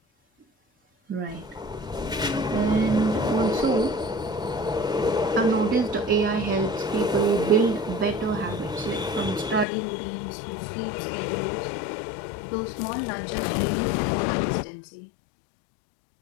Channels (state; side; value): drops out; right; at 9.7 s